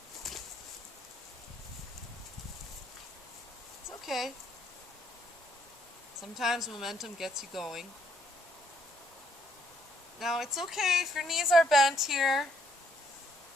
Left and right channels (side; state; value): both; normal; correlation 0.69